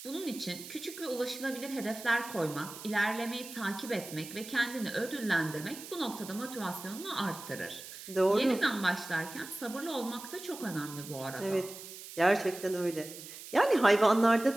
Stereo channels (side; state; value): right; noise; hiss, 13 dB below the sound